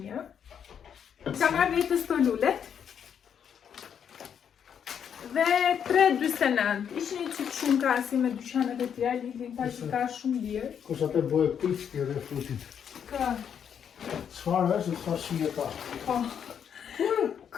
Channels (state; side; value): quieter; right; 8.1 dB